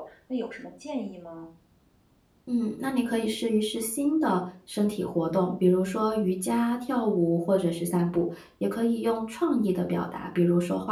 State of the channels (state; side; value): identical; both; correlation 1.00